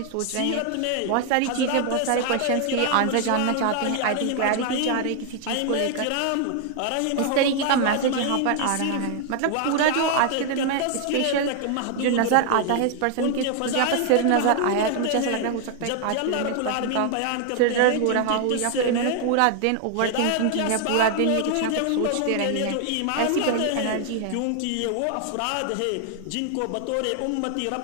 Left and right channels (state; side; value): different; both; correlation 0.00